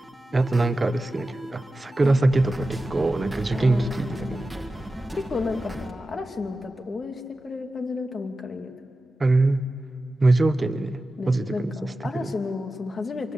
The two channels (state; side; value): normal; both; correlation 0.94